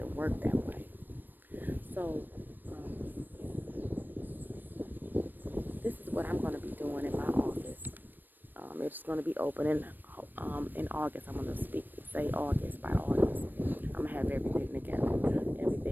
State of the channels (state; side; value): late; left; 0.092 ms